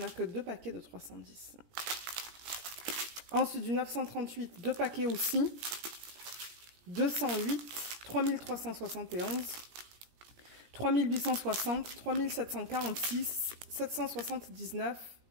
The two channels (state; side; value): late; left; 17 ms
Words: que 2 paquets de 310. Ensuite, du 938, 2 paquets aussi. 208, 3371, 3860, 3746, 779,